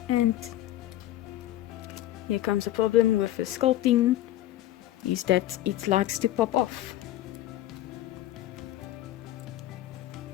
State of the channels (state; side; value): quieter; right; 14.3 dB